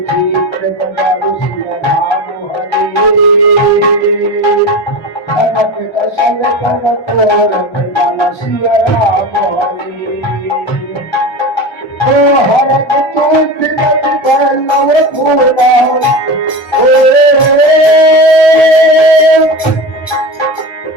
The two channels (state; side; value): normal; both; correlation 0.27